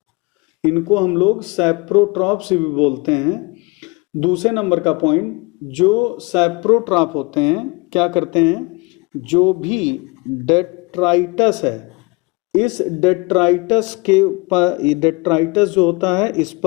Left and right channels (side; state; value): right; quieter; 26.9 dB